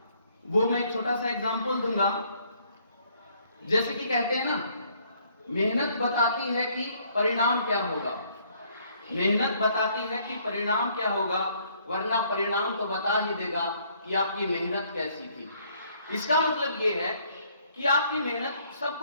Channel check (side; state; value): both; inverted; correlation -0.65